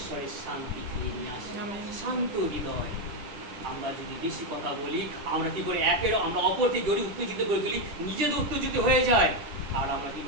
শান্তি নিয়ে আসে, শান্ত হৃদয়। আমরা যদি বেশি কথা বলি আমরা কি করি, আমরা অপরকে গড়ি উত্তেজিত করে তুলি, নিজেদের উত্তেজিত হয়ে যায়, আর আমরা কি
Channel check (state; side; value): late; left; 10 ms